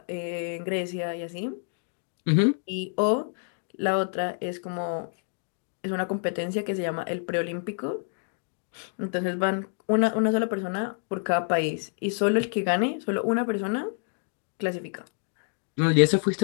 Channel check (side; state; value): right; silent; digital silence